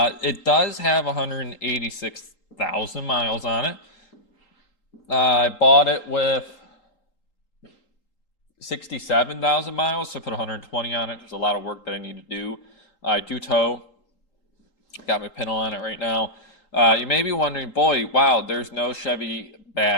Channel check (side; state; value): right; late; 3.8 ms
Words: It does have 186,000 miles on it. I bought it with 67,000 miles, so I put 120 on it. There's a lot of work that I need to do. I do tow. Got my pintle on it right now. You may be wondering, boy, wow, there's no Chevy